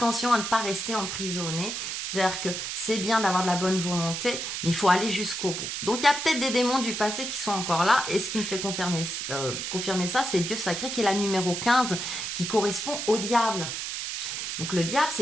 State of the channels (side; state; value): right; noise; hiss, 4 dB below the sound